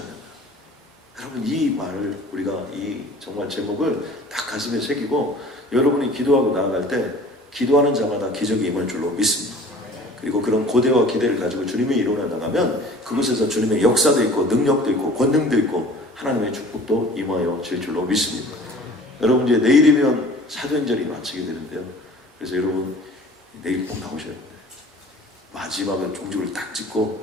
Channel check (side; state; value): both; normal; correlation 0.46